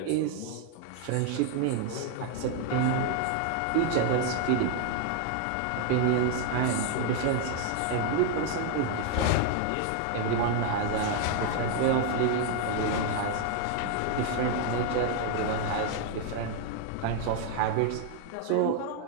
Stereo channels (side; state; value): both; different; correlation 0.00